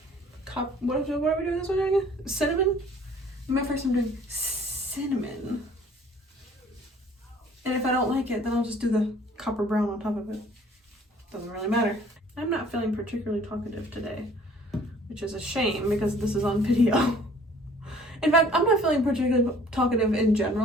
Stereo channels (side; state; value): both; normal; correlation 0.54